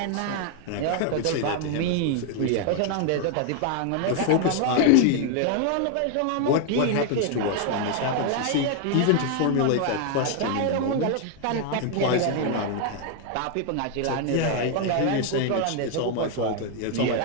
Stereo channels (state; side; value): different; both; correlation 0.01